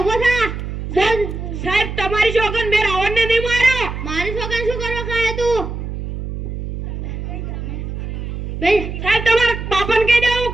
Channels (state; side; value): noise; right; hum, 6 dB below the sound